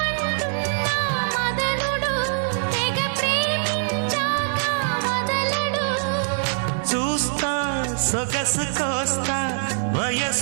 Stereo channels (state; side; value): silent; left; digital silence